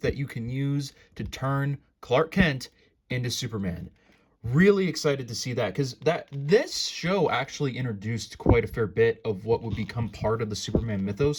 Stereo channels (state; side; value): identical; both; correlation 1.00